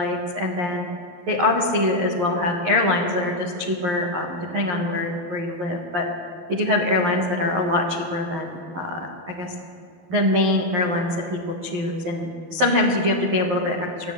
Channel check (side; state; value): left; late; 11 ms